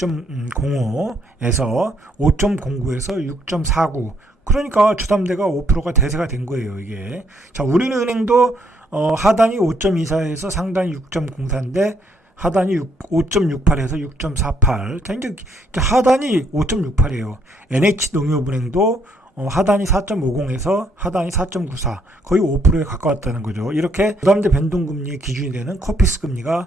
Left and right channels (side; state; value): both; normal; correlation 0.70